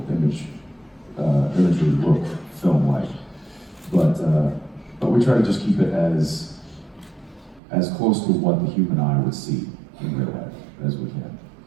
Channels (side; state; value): left; drops out; at 7.6 s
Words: imagery look film-like. But we try to just keep it as close to what the human eye would see in real life as we can.